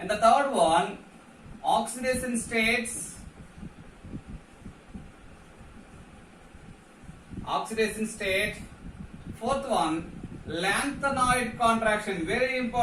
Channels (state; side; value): identical; both; correlation 1.00